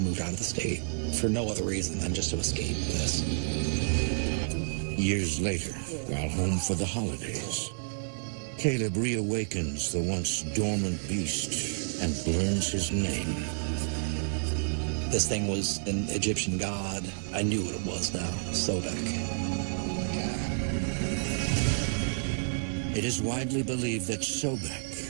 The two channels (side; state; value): left; silent; 58 dB below the other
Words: out of the state for no other reason than just to escape this. Years later, while home for the holidays, Caleb reawakens the once dormant beast and learns his name. This thing was an Egyptian god. I knew what it was now, Sobek. It is widely believed that